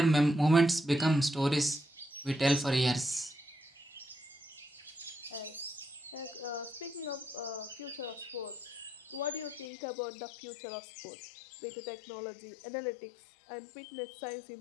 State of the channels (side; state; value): right; drops out; at 9.7 s